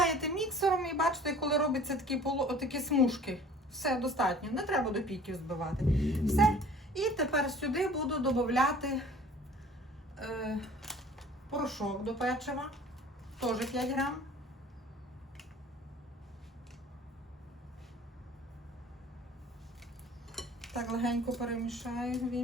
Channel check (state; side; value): normal; both; correlation 0.48